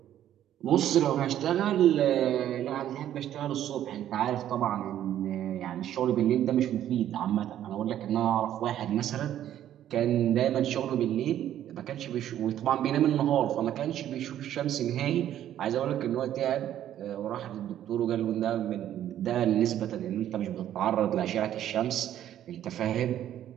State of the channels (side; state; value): left; quieter; 11.4 dB